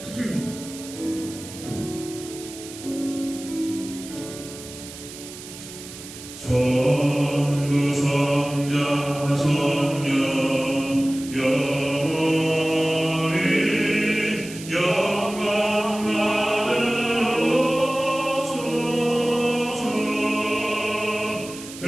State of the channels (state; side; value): noise; right; hiss, 14 dB below the sound